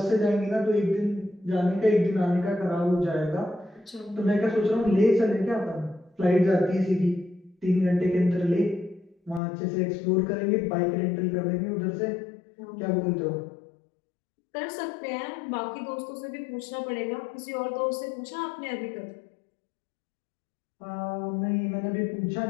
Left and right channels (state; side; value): drops out; right; at 9.4 s